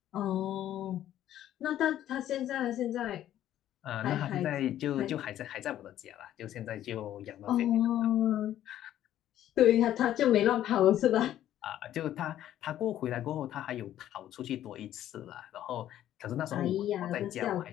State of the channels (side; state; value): right; quieter; 12.0 dB